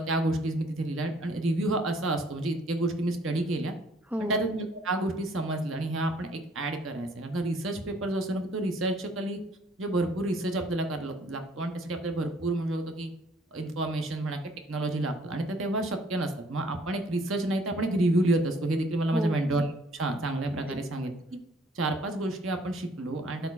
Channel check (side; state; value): both; normal; correlation 0.60